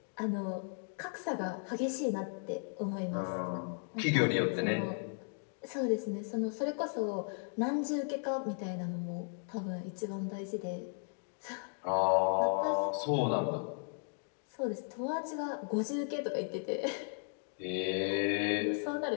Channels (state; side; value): silent; right; 54 dB below the other